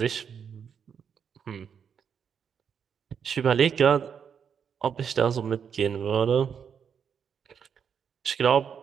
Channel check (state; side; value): quieter; left; 7.4 dB